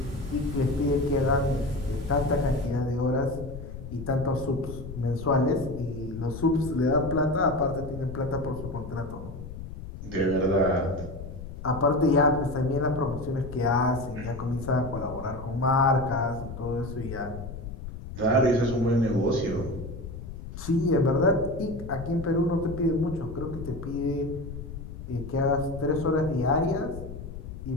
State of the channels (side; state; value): left; noise; rumble, 10 dB below the sound